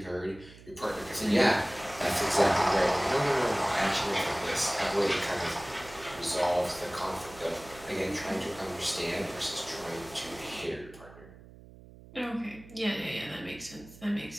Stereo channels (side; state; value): right; noise; hum, 20 dB below the sound